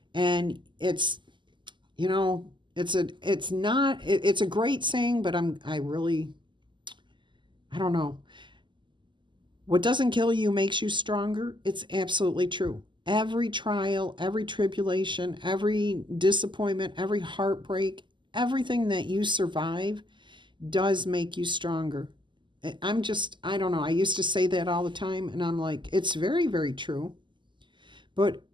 And it's, you know, it's a great saying, but I don't know. What doesn't kill you makes you stronger. It's absolutely true. Every trial, every tribulation, every disappointment, every heartbreak, everything that you survive does make you stronger. I don't know. I used to say that all the time, and I'm like, it's very, very true. But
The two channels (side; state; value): left; late; 0.23 ms